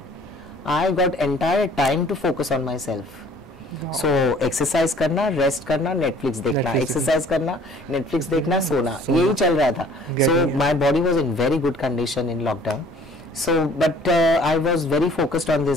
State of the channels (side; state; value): left; noise; rumble, 28 dB below the sound